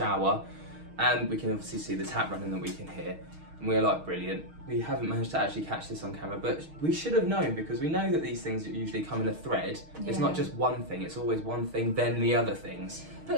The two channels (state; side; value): late; left; 6.4 ms